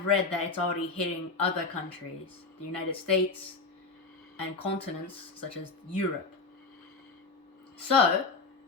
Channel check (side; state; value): right; quieter; 4.1 dB